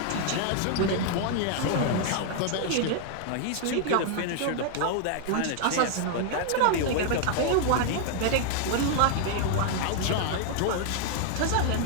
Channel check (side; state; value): both; different; correlation 0.00